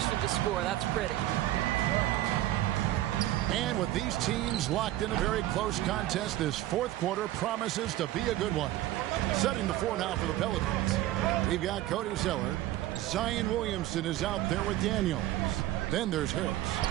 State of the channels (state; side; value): quieter; left; 14.9 dB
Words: to score. That's pretty. And with these teams locked in a very close contest, this fourth quarter promises to be a good one. Setting the floor now for the Pelicans. We've got Cody Zeller. Zion Williamson is out there with Daniels. Then there's Harris.